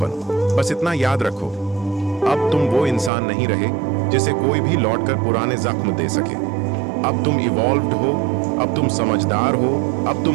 बस इतना याद रखो, अब तुम वो इंसान नहीं रहे जिसे कोई भी लौटकर पुराने जख्म दे सके। अब तुम इवॉल्व्ड हो, अब तुम समझदार हो, अब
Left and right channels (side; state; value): left; drops out; at 3.1 s